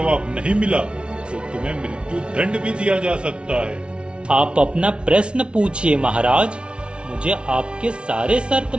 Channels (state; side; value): late; left; 0.058 ms